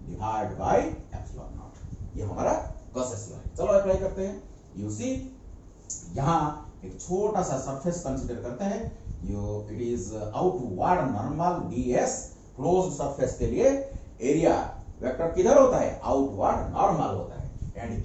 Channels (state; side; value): identical; both; correlation 1.00